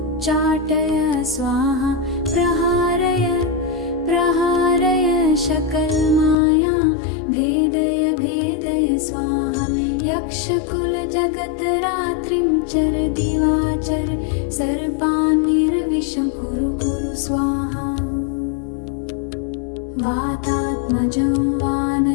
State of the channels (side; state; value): right; drops out; at 6.4 s